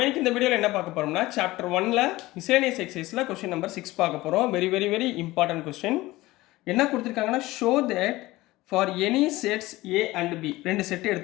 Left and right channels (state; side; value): quieter; right; 18.8 dB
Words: இன்னைக்கு இந்த வீடியோவில் என்ன பார்க்க போகிறோம்னா சாப்டர் 1ல் மிஸ்லேனியஸ் எக்ஸசைஸில் கொஸ்டின் நம்பர் 6 பார்க்க போகிறோம். Very important question. என்ன கொடுத்துருக்காங்கன்னா, show that for any sets A and B, ரெண்டு செட்டு